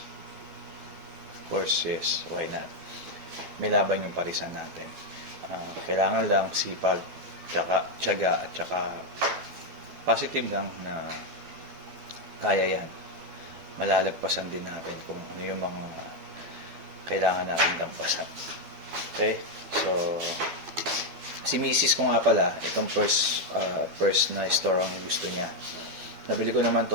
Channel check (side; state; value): left; late; 12 ms